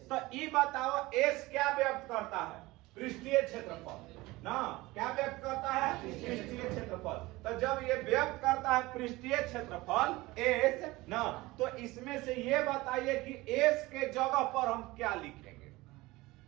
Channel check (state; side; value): quieter; left; 20.3 dB